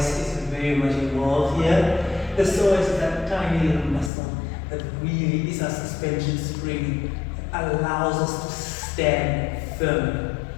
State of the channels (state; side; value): drops out; right; at 4.1 s